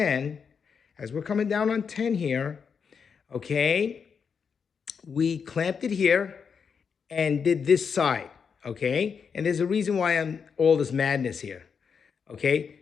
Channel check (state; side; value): quieter; right; 6.3 dB